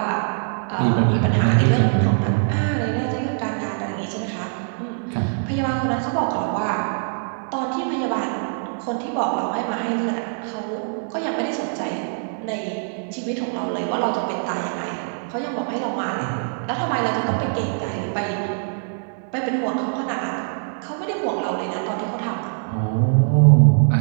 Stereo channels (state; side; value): silent; left; digital silence